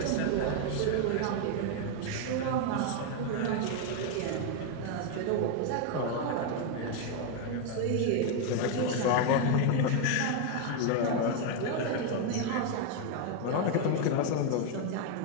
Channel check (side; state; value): both; different; correlation 0.01